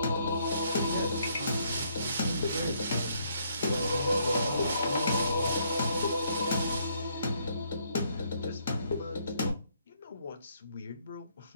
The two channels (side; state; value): both; inverted; correlation -0.70